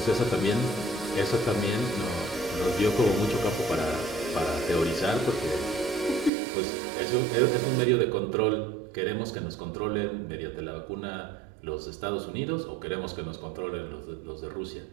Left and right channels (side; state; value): left; drops out; at 6.3 s